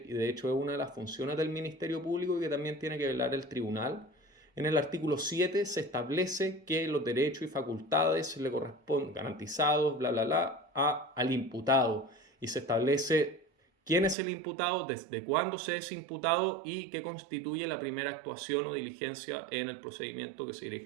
y de hecho es una de las funciones del Ministerio Público y que también tiene que velar el tribunal. En el artículo 7 se establece que los derechos y facultades le corresponden garantizados, bla, bla, bla, al imputado. Y se establece quién es el imputado, desde cuándo se es imputado y qué constituye la primera actuación o diligencia en el procedimiento que se dirige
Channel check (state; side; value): drops out; left; at 14.2 s